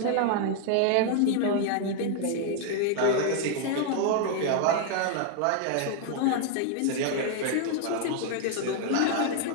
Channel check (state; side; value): different; both; correlation 0.00